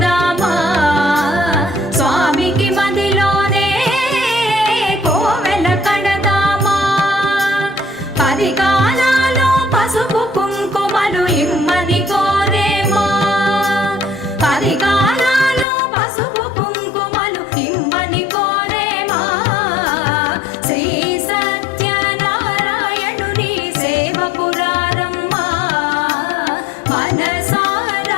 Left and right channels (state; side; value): drops out; right; at 15.7 s